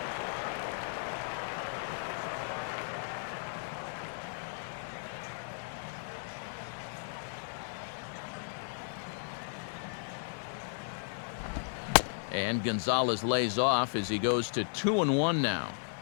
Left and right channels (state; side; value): silent; right; 54 dB below the other